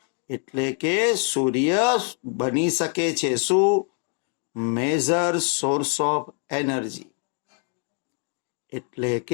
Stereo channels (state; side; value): quieter; right; 39.5 dB